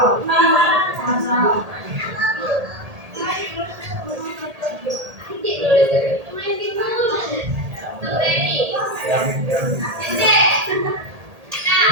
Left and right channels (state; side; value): late; left; 1.8 ms